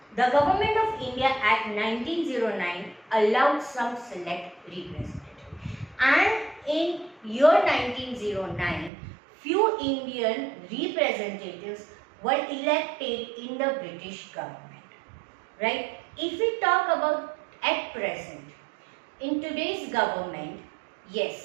The Government of India Act 1909 allowed some select representatives, and in year 1909 few Indian representatives were elected in the British government, right? If we talk about at present, in today's government,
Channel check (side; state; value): left; drops out; at 8.9 s